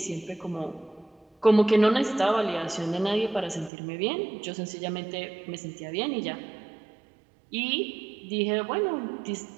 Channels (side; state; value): left; drops out; at 3.7 s